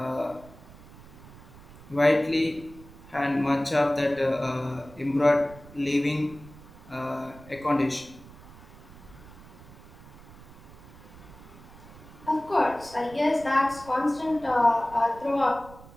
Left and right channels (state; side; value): noise; right; rumble, 19 dB below the sound